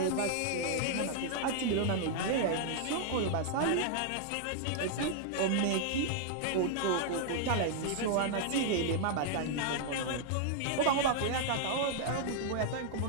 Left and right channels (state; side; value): different; both; correlation -0.01